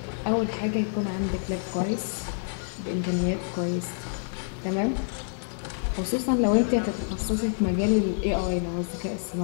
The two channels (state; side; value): silent; right; 60 dB below the other